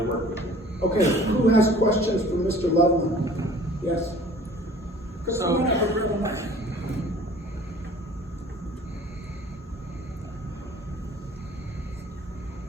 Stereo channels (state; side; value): normal; both; correlation 0.49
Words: work with you. Okay, who has questions for Mr. Loveland? Yes.